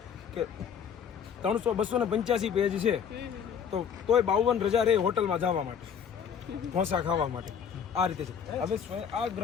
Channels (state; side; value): quieter; right; 7.5 dB